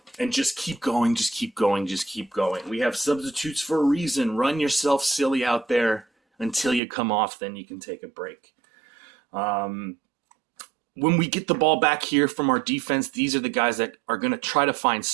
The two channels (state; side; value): drops out; left; at 6.8 s